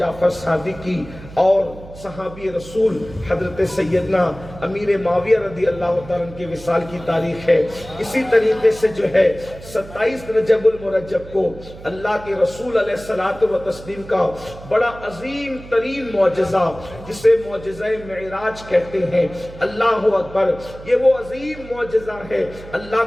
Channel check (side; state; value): right; noise; hum, 16 dB below the sound